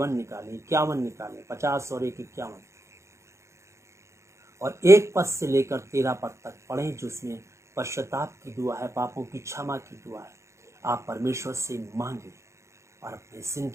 निकालें, 51 निकालें, 50 और 1 51, और 1 पद से लेकर 13 पद तक पढ़ें, जिसमें पश्चाताप की दुआ है, पापों की क्षमा की दुआ है। आप परमेश्वर से मांगे और अपनी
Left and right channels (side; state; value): left; late; 0.14 ms